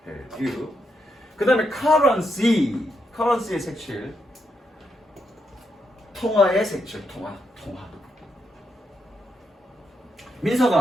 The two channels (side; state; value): both; normal; correlation 0.81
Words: 해류. 그 다음에 currency의 색칠. 통화의 색칠. 통화.